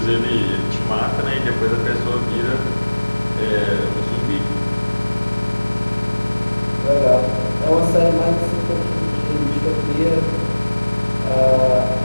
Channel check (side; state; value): both; inverted; correlation -1.00